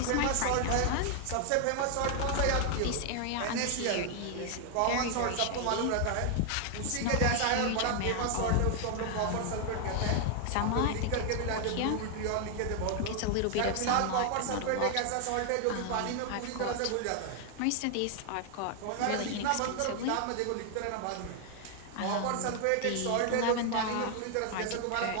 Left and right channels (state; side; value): different; both; correlation 0.00